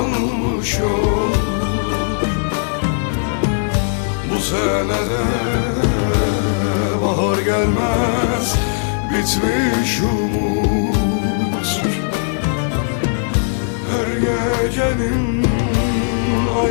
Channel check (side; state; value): right; silent; 56 dB below the other